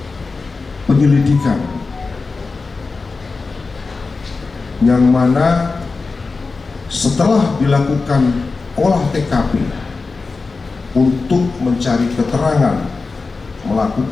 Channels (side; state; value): right; quieter; 4.1 dB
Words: penyelidikan yang mana setelah dilakukan olah TKP untuk mencari keterangan,